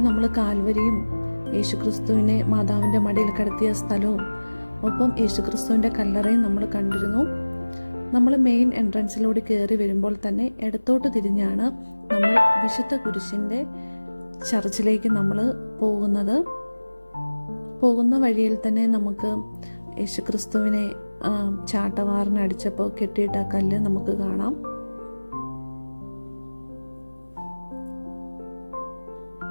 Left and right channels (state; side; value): inverted; both; correlation -1.00